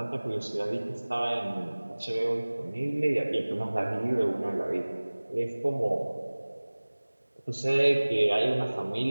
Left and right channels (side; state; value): both; inverted; correlation -1.00